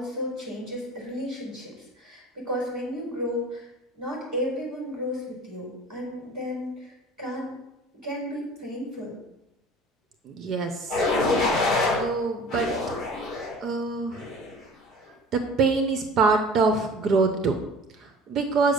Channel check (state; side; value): normal; both; correlation 0.44